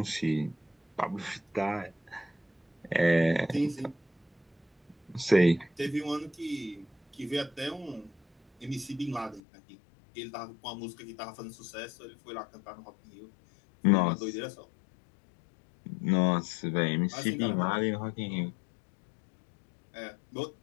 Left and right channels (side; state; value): right; drops out; at 9.4 s